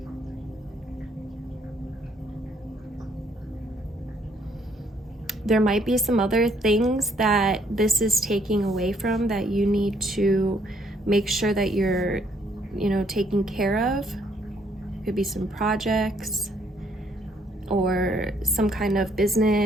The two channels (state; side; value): normal; both; correlation 0.69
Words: There might be some other things that this is taking away from that you need to make sure that you're, you know, taking care of. Could be some projects or some kind of